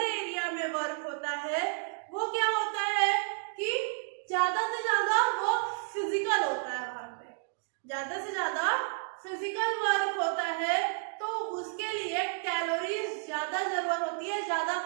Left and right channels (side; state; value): left; silent; digital silence